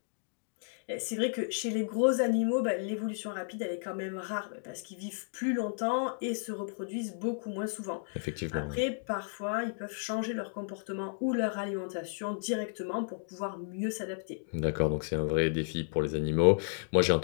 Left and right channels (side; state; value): right; silent; digital silence